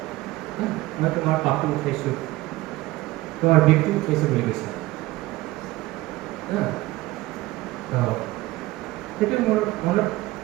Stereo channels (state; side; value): quieter; left; 18.7 dB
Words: মই তোমাৰ পাপটো উঠাইছোঁ, তোমাৰ বিষটো উঠাইছোঁ বুলি কৈছে। সেইটো মোৰ মনত